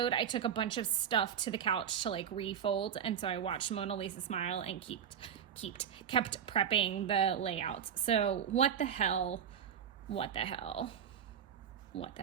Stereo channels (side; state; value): left; quieter; 8.4 dB